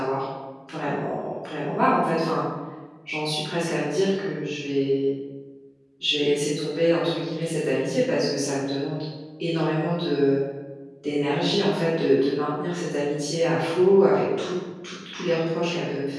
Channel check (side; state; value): both; identical; correlation 1.00